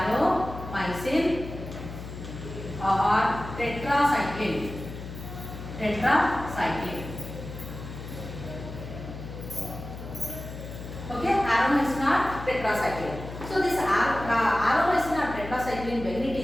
or tetracycline. Okay, aromycin or tetracycline. So this aromycin or tetracycline, when it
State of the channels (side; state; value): left; noise; hum, 10 dB below the sound